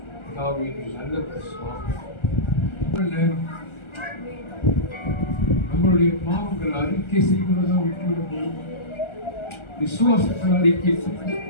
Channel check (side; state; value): right; late; 1.4 ms